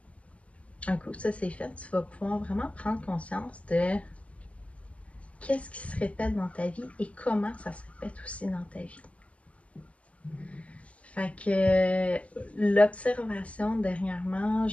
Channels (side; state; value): right; late; 0.064 ms